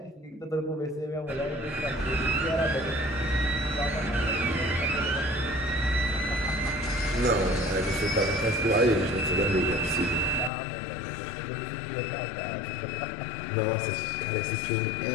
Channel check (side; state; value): right; drops out; at 10.5 s